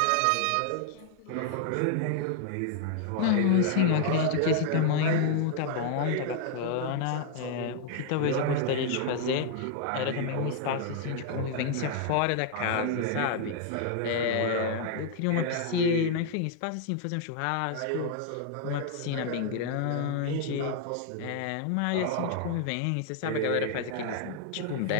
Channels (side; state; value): both; different; correlation 0.00